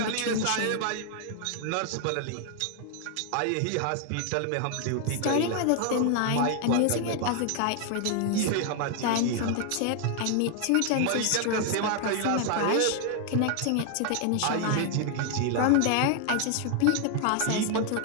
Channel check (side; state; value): both; different; correlation 0.00